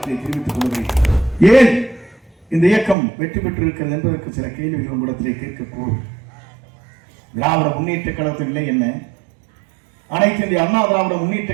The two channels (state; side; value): drops out; left; at 3.0 s